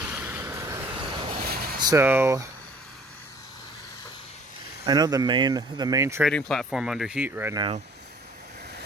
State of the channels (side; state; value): both; normal; correlation 0.53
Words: So I know the main trading platform under heat right now